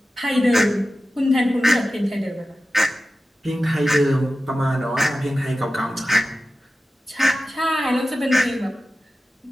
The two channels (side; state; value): both; normal; correlation 0.94